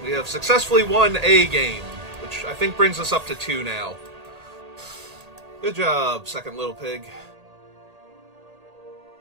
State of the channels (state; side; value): late; left; 1.8 ms